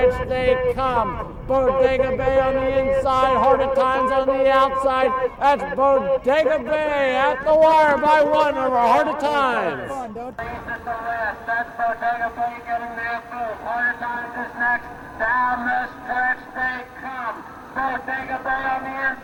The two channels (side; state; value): both; identical; correlation 1.00